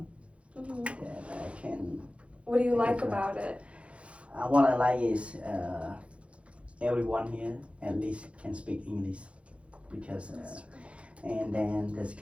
Mhm. that I can. What do you like Correct. about it? What I like is everyone here at least can speak English because, and then the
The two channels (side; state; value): left; late; 0.061 ms